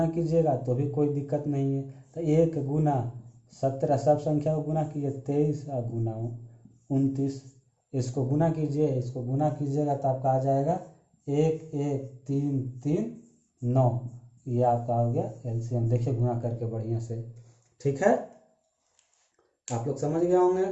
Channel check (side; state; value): both; identical; correlation 1.00